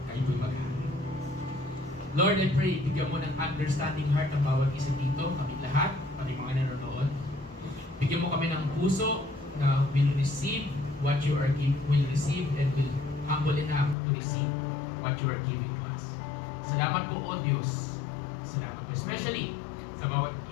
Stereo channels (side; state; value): right; drops out; at 14.0 s